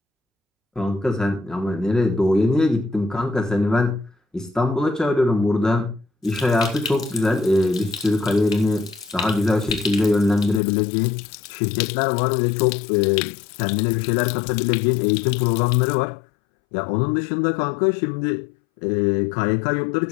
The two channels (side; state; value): right; drops out; at 10.6 s